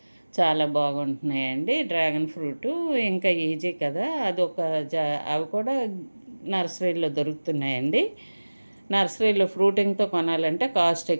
చాలా బాగుంటున్నాయండి డ్రాగన్ ఫ్రూటు. ఇంకా ఈజీ కదా. అదొక అవి కూడా నర్సరీలో దొరుకుతున్నాయండి. నర్సరీలో ఫ్రూటింగ్తో కొనాలంటే కాస్ట్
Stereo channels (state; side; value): inverted; both; correlation -1.00